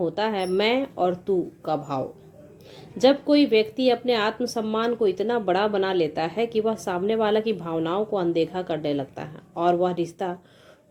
है मैं और तू का भाव। जब कोई व्यक्ति अपने आत्मसम्मान को इतना बड़ा बना लेता है कि वह सामने वाला की भावनाओं को अनदेखा करने लगता है और वह रिश्ता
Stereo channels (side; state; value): both; identical; correlation 1.00